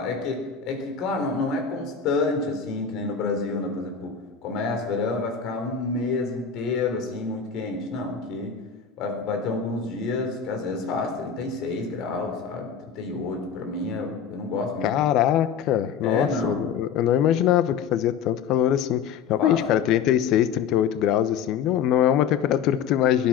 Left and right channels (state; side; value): quieter; right; 7.4 dB